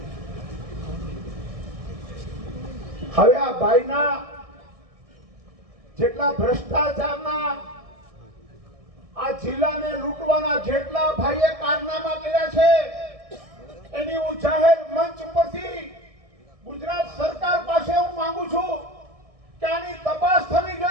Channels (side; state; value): left; late; 1.6 ms